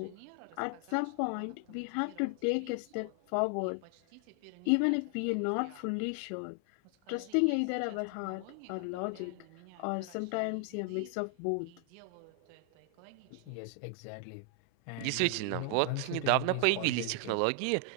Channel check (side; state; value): both; different; correlation 0.00